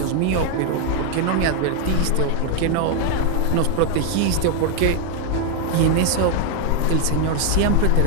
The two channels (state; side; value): different; both; correlation 0.00